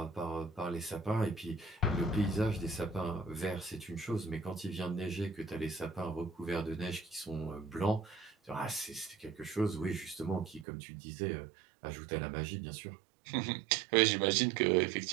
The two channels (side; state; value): left; drops out; at 10.7 s